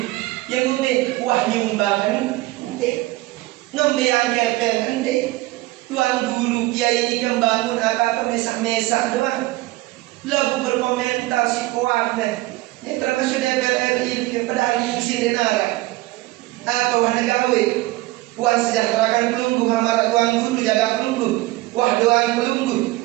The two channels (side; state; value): left; quieter; 19.3 dB